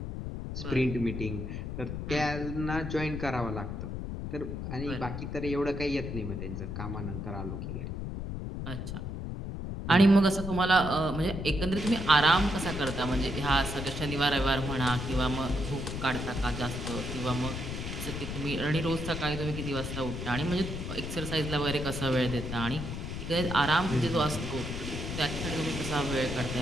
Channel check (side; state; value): left; noise; rumble, 5 dB below the sound